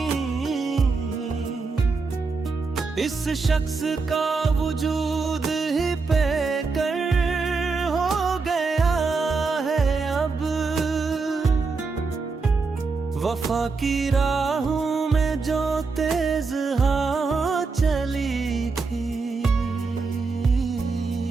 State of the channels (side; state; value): left; quieter; 4.4 dB